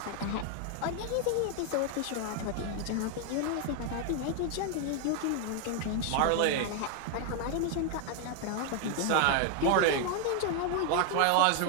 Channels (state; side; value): different; both; correlation 0.01